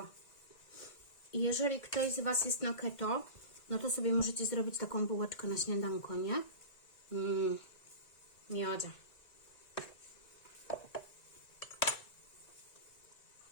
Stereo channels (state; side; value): late; right; 1.9 ms